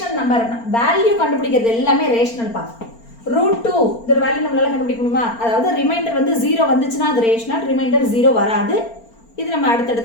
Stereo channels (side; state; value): right; late; 4.4 ms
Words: number value கண்டுபிடிக்கிறது எல்லாமே ரேஷனல் பா. √2 இதோட வேல்யூ நம்மளால கண்டுபிடிக்க முடியுமா? அதாவது ரிமைண்டர் வந்து 0 வந்துச்சுன்னா அது ரேஷனல், ரிமைண்டர் 0 வராது. இது நம்ம